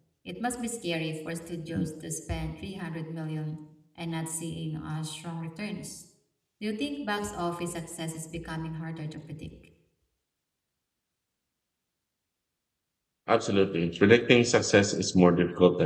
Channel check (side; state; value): both; identical; correlation 1.00